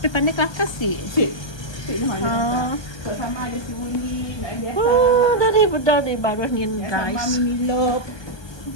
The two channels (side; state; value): right; late; 1.2 ms